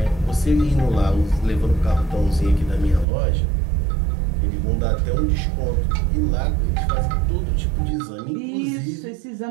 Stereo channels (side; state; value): left; drops out; at 3.1 s